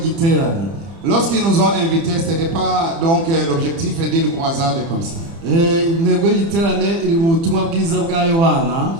Lorsqu'ils nous ont invités, ce n'était pas donc l'objectif d'une croisade comme ça.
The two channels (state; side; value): late; left; 30 ms